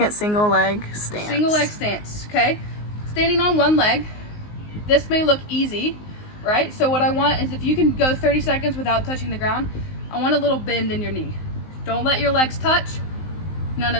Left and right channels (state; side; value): late; right; 19 ms